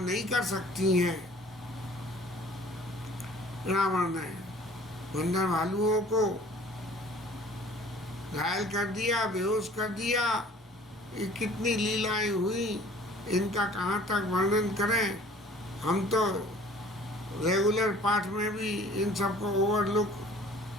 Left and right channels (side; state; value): both; normal; correlation 0.51